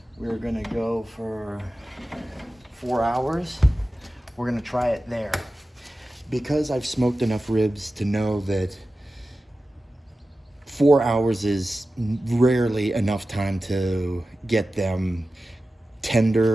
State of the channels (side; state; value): both; normal; correlation 0.94